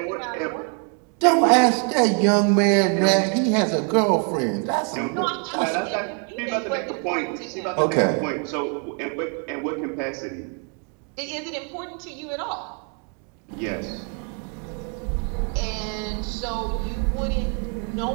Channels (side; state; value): left; quieter; 39.2 dB